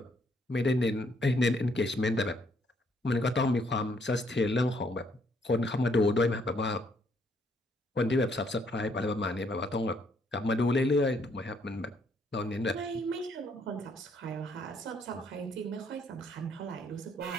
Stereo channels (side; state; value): both; normal; correlation 0.69